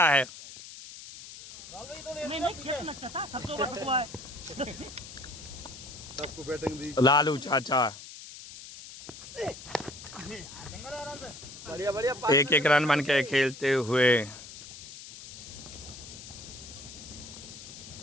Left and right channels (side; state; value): left; noise; hiss, 14 dB below the sound